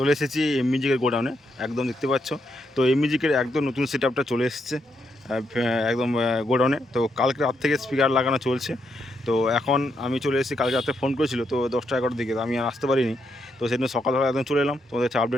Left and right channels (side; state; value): both; normal; correlation 0.79